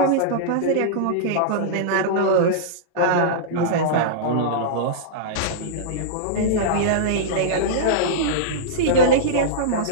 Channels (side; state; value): both; different; correlation -0.03